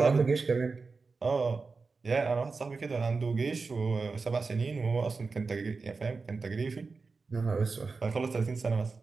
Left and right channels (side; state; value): left; quieter; 4.3 dB